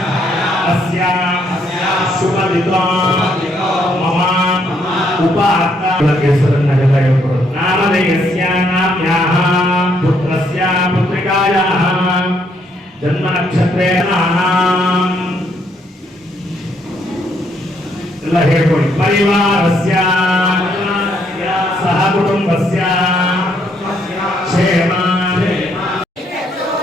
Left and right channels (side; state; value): both; normal; correlation 0.71